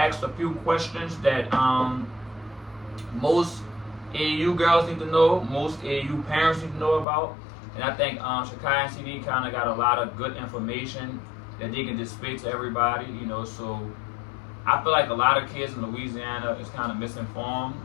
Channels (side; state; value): right; drops out; at 7.1 s